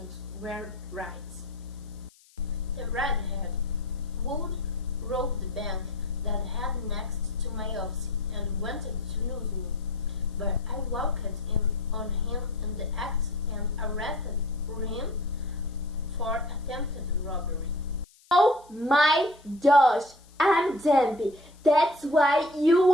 were right. The redhead would rob the bank that had next to my office and wanted to lose me, but I walked in on him in the act and arrested him for attempted robbery. Oh my gosh, I'm Debbie. That's why you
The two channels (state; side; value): noise; left; hiss, 29 dB below the sound